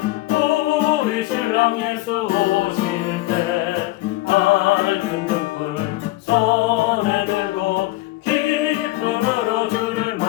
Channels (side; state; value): right; quieter; 18.6 dB